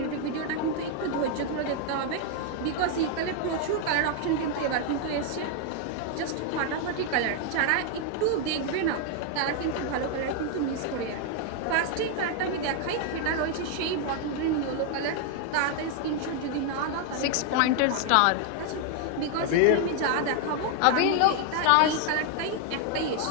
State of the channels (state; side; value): different; both; correlation 0.00